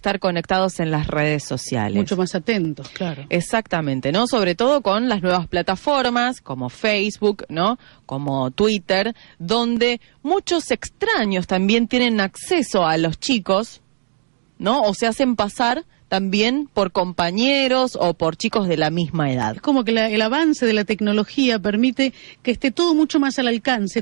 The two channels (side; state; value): left; silent; digital silence